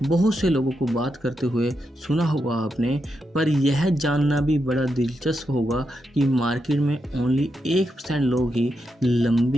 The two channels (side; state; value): both; normal; correlation 0.85